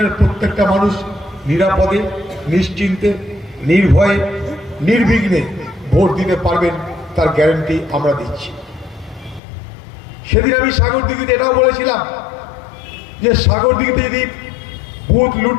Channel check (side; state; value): right; drops out; at 9.4 s